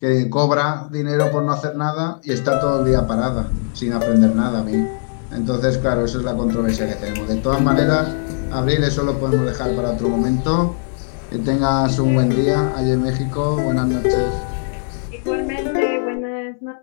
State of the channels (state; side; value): silent; right; 67 dB below the other